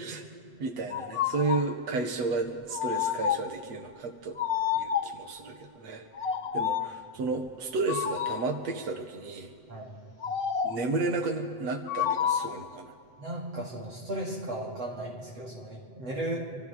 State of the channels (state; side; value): late; left; 8.0 ms